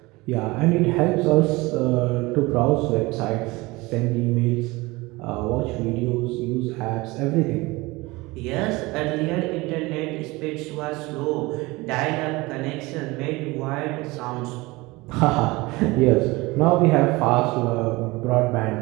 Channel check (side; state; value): left; quieter; 22.3 dB